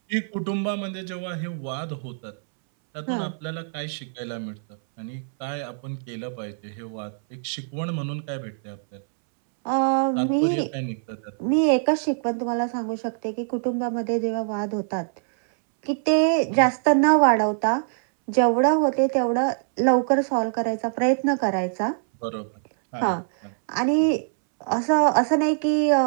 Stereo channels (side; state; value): left; silent; 63 dB below the other